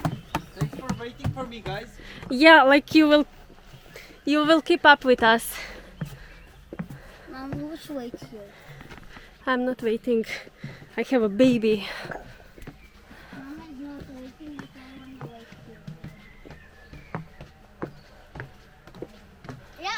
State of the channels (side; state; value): both; identical; correlation 1.00